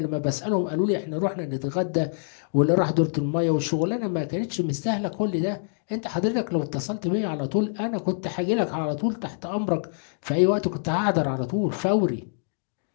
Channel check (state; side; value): silent; right; digital silence